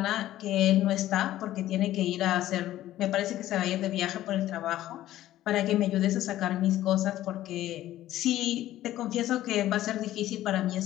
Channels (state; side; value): quieter; right; 14.0 dB